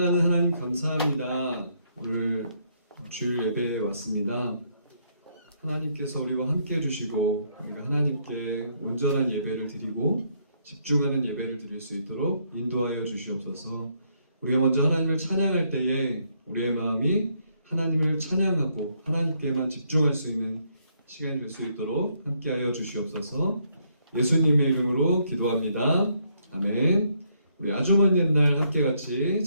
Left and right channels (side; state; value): both; inverted; correlation -0.72